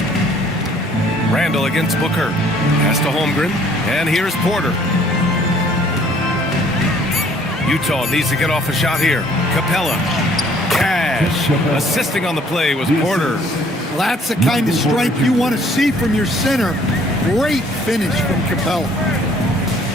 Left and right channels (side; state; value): both; normal; correlation 0.59